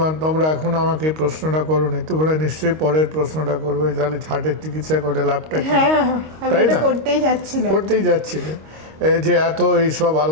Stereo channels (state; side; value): late; left; 26 ms